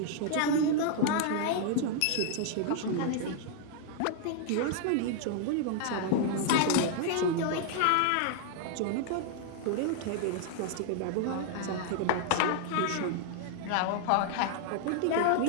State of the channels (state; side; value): different; both; correlation -0.01